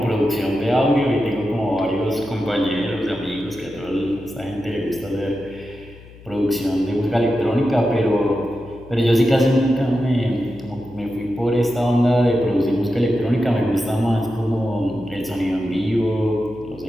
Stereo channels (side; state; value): left; noise; hum, 20 dB below the sound